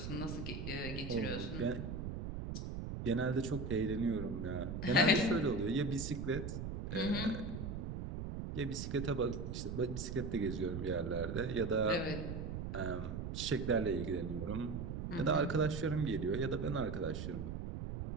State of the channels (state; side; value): noise; right; rumble, 5 dB below the sound